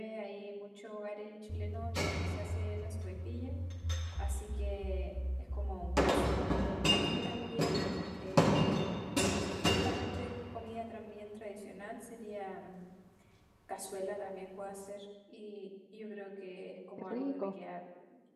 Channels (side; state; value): both; identical; correlation 1.00